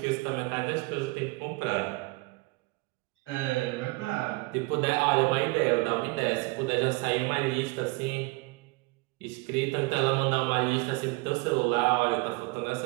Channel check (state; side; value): quieter; left; 25.8 dB